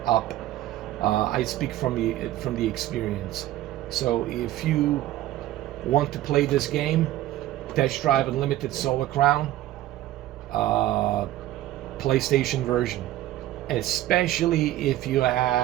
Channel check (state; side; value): quieter; left; 14.3 dB